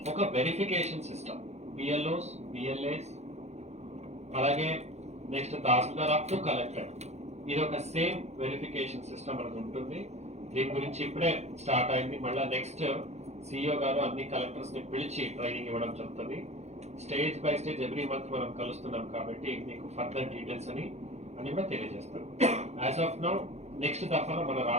ఒక వెరిఫికేషన్ సిస్టమ్, బిఎల్ఓస్, బిఎల్ఏస్, అలాగే next tahsildar up to collector, ఇది ఒక సేమ్ వెరిఫికేషన్ సిస్టమ్ అనేది ఉంటుంది. దీని గురించి ఇప్పుడే స్టార్ట్ అయింది. మళ్ళీ నెక్స్ట్ సిఇఓ గారు అన్ని కలెక్టర్స్ ని పిలిచి ట్రైనింగ్ ఇవ్వడం జరుగుతుంది. Stage by stage every month మనం కలుస్తున్నాం కాబట్టి మీకు ఫర్దర్ డీటెయిల్స్ అని కూడా తెలియజేస్తాం. యాజ్ ఆఫ్ నౌ నెక్స్ట్ దఫాలో మన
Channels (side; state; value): left; late; 0.32 ms